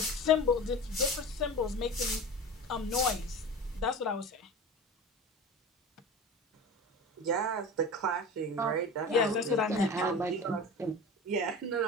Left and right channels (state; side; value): normal; both; correlation 0.33